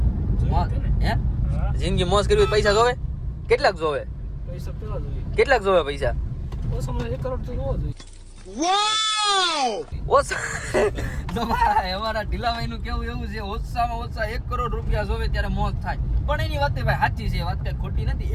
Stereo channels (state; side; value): identical; both; correlation 1.00